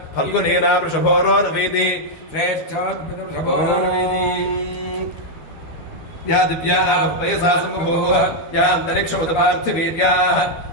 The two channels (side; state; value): right; late; 13 ms